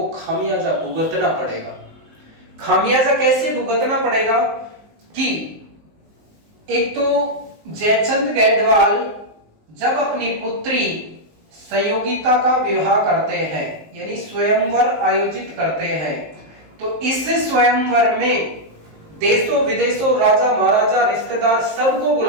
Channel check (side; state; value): left; late; 19 ms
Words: खामियाजा भुगतना पड़ेगा। खामियाजा कैसे भुगतना पड़ेगा कि एक तो जयचंद गहडवाल जब अपनी पुत्री संयोगिता का विवाह करते हैं, यानी स्वयंवर आयोजित करते हैं, तो इस स्वयंवर में देशों विदेशों राजा महाराजा रिश्तेदार सबको